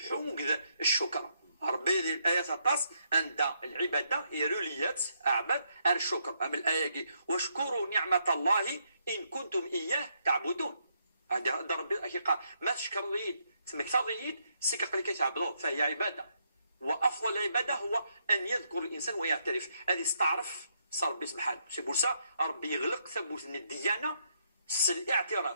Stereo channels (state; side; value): inverted; both; correlation -0.76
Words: الشكر ربي الآيات الطاس عند العبادة يروليات أعبد الشكر أما الآية واشكروا نعمة الله إن كنتم إياه تعبدون هذا ربي قال ما تشكر ليد تسمك تضيد سكق لك تعبدون فهي عبادة وأفضل العبادة هو أن يذكر الإنسان ويعترف هذه استعرف صار ربي سبحانه سي بورسا ربي يغلق ثبوت الديانة